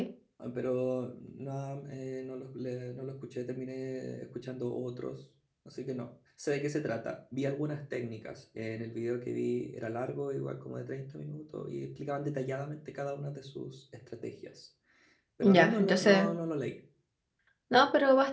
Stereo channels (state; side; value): identical; both; correlation 1.00